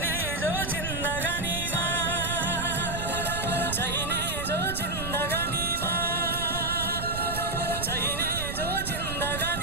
जो जिन्दगानीमा चाहिने जो जिन्दगानीमा चाहिने जो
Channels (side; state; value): right; noise; rumble, 6 dB below the sound